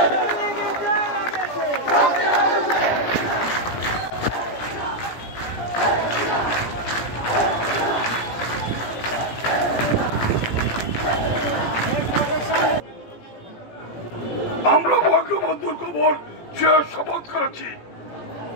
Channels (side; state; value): right; late; 17 ms